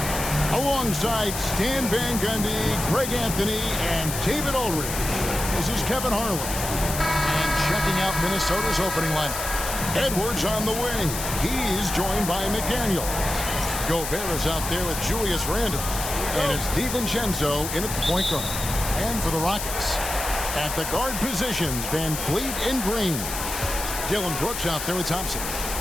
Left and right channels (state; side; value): noise; left; hiss, 5 dB below the sound